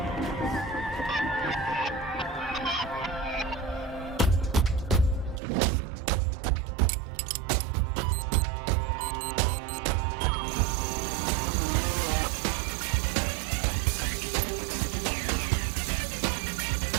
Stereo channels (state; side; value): drops out; left; at 5.4 s